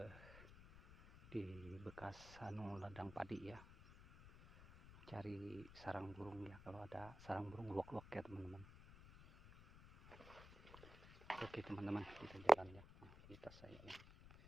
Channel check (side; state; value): left; noise; rumble, 16 dB below the sound